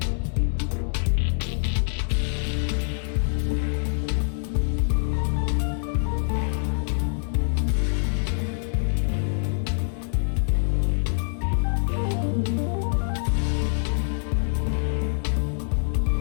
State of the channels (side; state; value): right; silent; 62 dB below the other